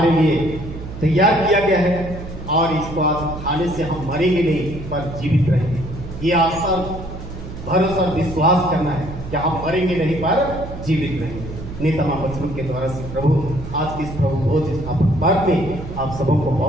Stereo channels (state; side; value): noise; right; hum, 11 dB below the sound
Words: लिए तैयार किया गया है, और इसको आज खाने से हम मरेंगे नहीं पर जीवित रहेंगे। ये आशा, भरोसा और विश्वास करना है कि हम मरेंगे नहीं पर जीवित रहेंगे। नेतमा वचनों के द्वारा से प्रभु आज के इस प्रभु भोज स्थापन पर्व में आप सबों को